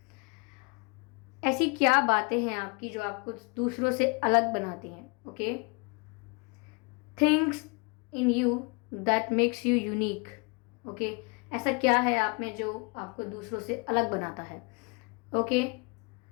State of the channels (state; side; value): quieter; right; 32.1 dB